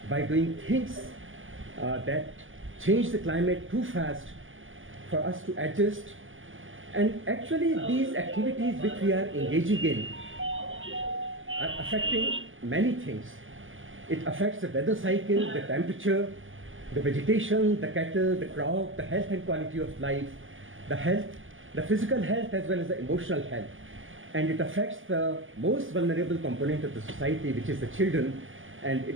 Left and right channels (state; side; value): late; left; 0.58 ms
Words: by doing things that change the climate too fast for us to adjust. And actually these activities which we are engaging in are affecting many things. It affects the weather cycle, the temperature, the vegetation, the cattle, the crop, the health and quality of life, the health, the physical health as well as the emotional health. And it affects the most vulnerable component of the society, which is the children. And